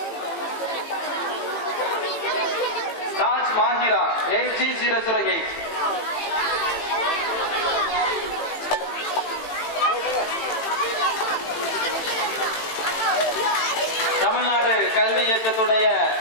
6B008. Tamil Nadu கல்வி இயக்கத்துடைய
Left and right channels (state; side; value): late; right; 18 ms